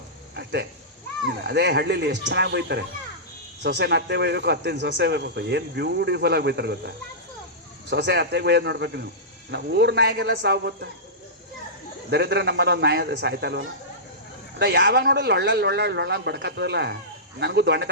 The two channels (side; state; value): both; normal; correlation -0.17